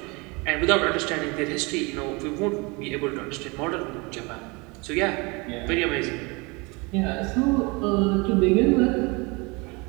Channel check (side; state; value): left; quieter; 27.6 dB